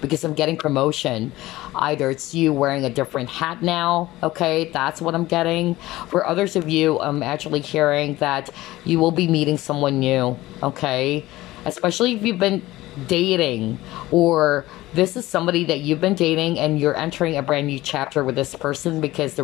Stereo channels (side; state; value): right; quieter; 17.4 dB